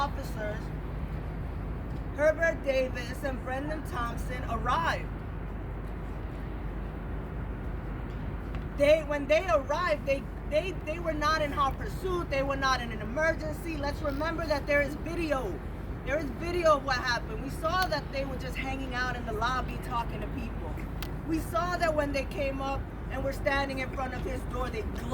Herbert Davis and Brendan Thompson arrived. When they arrived, they were not in hot pursuit. They were not in an emergency. Let's remember that there is video. There is video of what happened. We saw that they were just hanging out in the lobby talking to people. We saw that when they came up and were standing in front of his door, they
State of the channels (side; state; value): both; identical; correlation 1.00